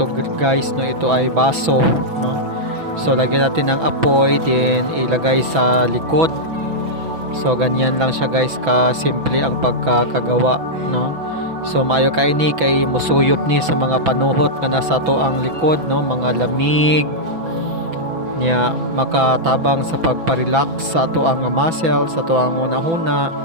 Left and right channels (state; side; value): late; left; 6.0 ms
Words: guys, ito ay baso. So lagyan natin ng apoy, din ilagay sa likod. So ganyan lang siya guys, ka simple ang pagkakagawa. So maayo kay ni kay musuyop ni sa mga panuhot nga nasa to ang likod, mga lamig niya, makatabang sa pagparelax sa ato ang muscle, sa to ang una-huna.